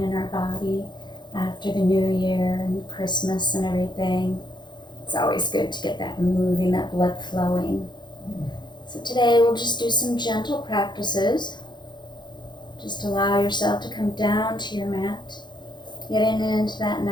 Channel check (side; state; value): right; late; 0.21 ms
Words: in our body after the new year and Christmas and everything. It's always good to get that moving, that blood flowing. So today we'll just do some gentle practices. Just allow yourself to come down to your mat, getting into that